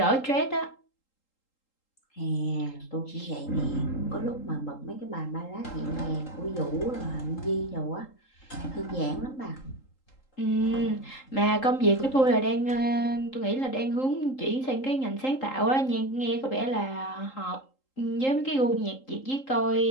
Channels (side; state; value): right; late; 3.8 ms